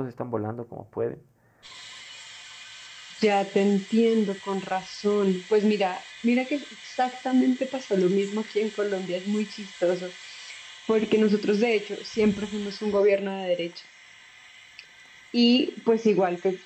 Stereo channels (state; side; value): identical; both; correlation 1.00